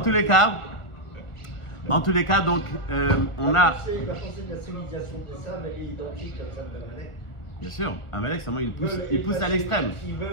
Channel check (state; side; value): late; right; 1.4 ms